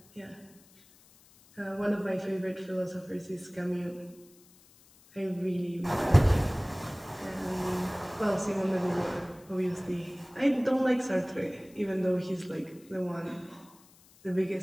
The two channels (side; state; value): left; noise; hiss, 27 dB below the sound